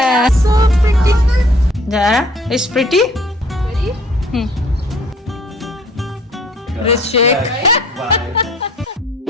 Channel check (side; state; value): both; normal; correlation 0.56